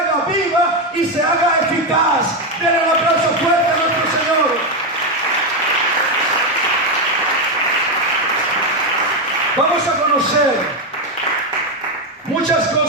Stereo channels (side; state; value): both; normal; correlation 0.08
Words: viva y se haga eficaz. Denle un aplauso fuerte a nuestro Señor. Vamos a conocer muchas